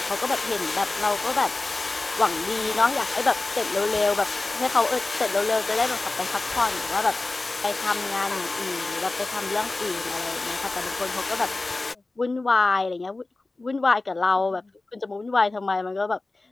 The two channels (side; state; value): right; quieter; 3.2 dB